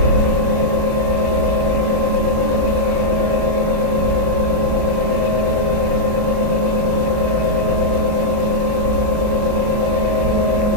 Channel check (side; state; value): left; late; 38 ms